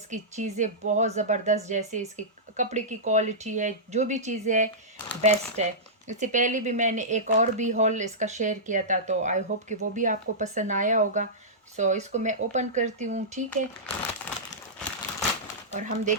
चीज़ें बहुत ज़बरदस्त, जैसे इसके कपड़े की क्वालिटी है, जो भी चीज़ें है बेस्ट है। इससे पहले भी मैंने एक और भी हॉल इसका शेयर किया था, तो आई होप कि वो भी आपको पसंद आया होगा। इसको मैं ओपन करती हूँ। ठीक है, और हम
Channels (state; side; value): normal; both; correlation -0.15